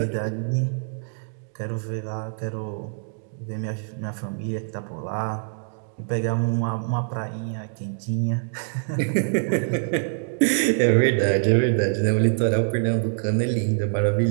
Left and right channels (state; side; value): silent; left; digital silence